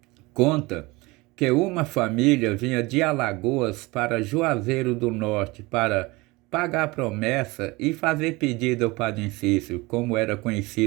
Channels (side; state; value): left; quieter; 23.1 dB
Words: conta que uma família vinha de Alagoas para Juazeiro do Norte para pagar promessa e fazer pedido ao Padre Cícero, como era